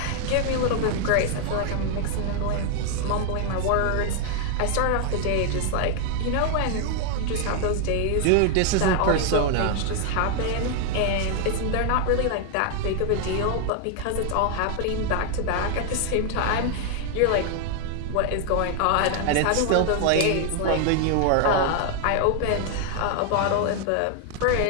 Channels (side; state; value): both; different; correlation 0.00